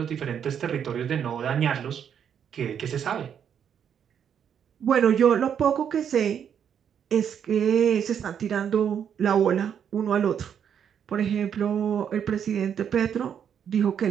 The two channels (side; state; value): left; quieter; 8.3 dB